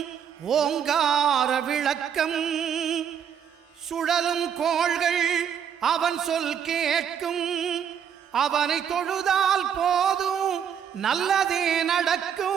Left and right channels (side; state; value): left; quieter; 8.2 dB